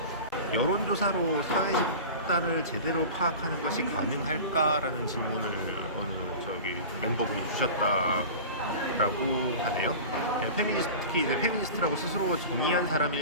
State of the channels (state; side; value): inverted; both; correlation -0.35